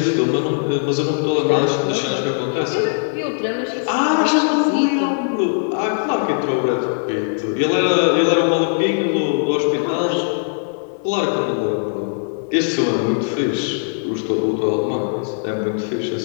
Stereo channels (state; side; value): silent; right; 66 dB below the other